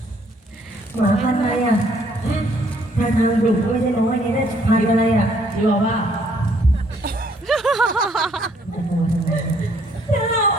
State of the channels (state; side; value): normal; both; correlation 0.65